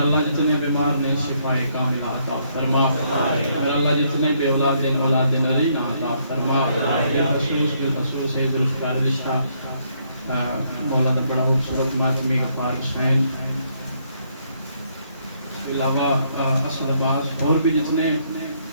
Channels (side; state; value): both; inverted; correlation -0.71